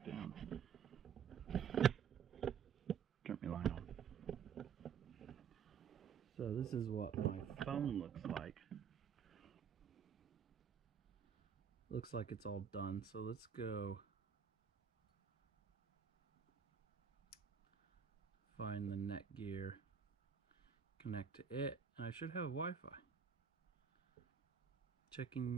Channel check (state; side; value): quieter; left; 7.2 dB